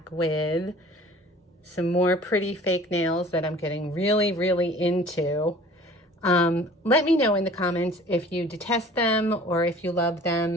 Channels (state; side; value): normal; both; correlation 0.47